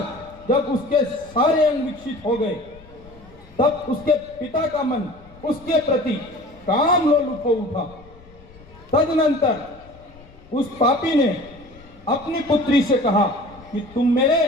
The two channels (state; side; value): noise; left; rumble, 23 dB below the sound